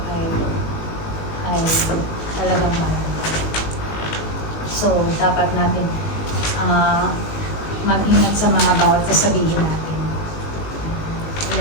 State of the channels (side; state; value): right; late; 19 ms